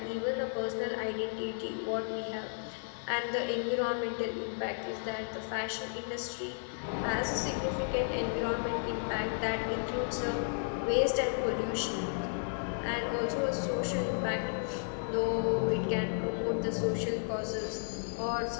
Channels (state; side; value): silent; right; digital silence